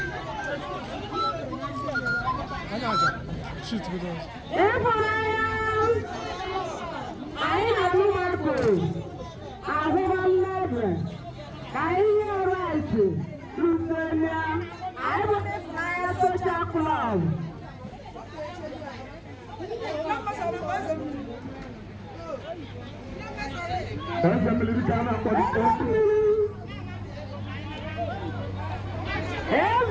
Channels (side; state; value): both; identical; correlation 1.00